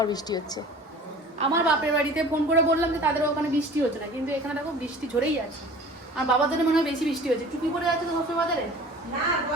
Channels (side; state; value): both; normal; correlation 0.44